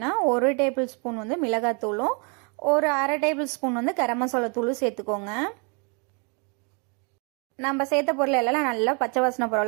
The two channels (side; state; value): left; quieter; 35.2 dB